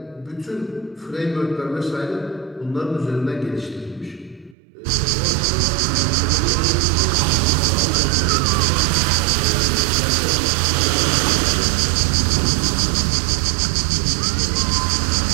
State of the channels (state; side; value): drops out; left; at 4.5 s